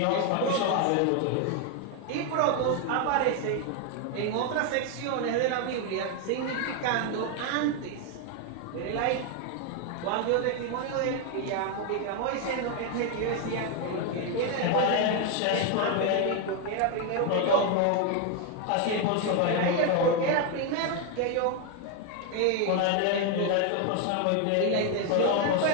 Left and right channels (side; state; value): both; different; correlation 0.01